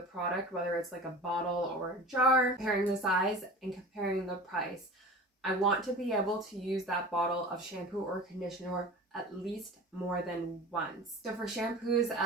whether it's like a bottle or a jar, comparing the size and comparing the price. I want to be able to use that bottle of shampoo or conditioner at least more than once. So for shampoos,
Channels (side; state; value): both; normal; correlation 0.37